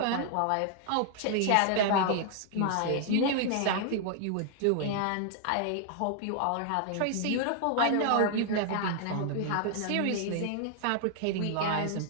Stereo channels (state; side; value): different; both; correlation 0.00